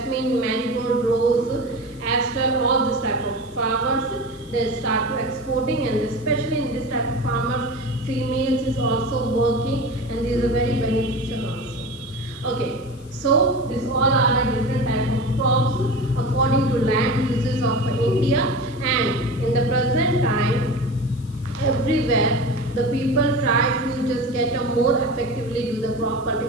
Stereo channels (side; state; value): left; noise; hiss, 26 dB below the sound